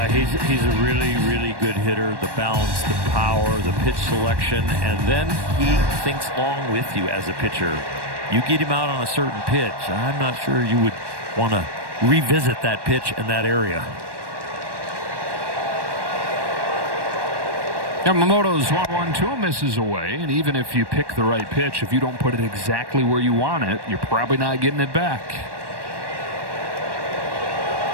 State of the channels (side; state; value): left; late; 1.1 ms